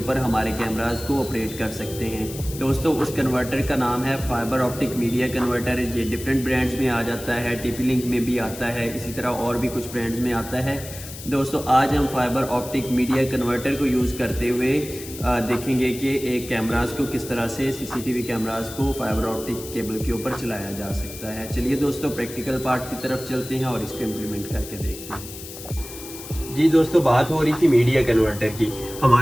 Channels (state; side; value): noise; left; hiss, 13 dB below the sound